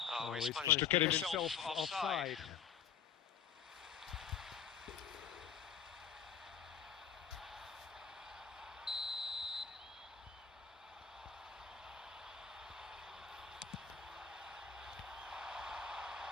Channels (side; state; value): right; quieter; 7.5 dB